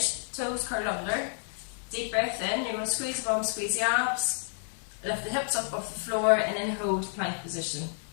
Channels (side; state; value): right; silent; digital silence